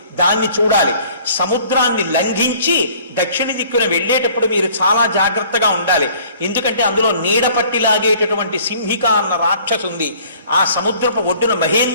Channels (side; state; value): both; inverted; correlation -0.53